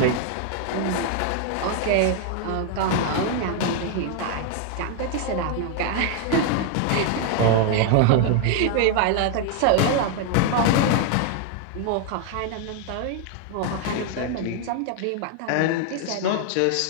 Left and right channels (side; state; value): both; different; correlation 0.00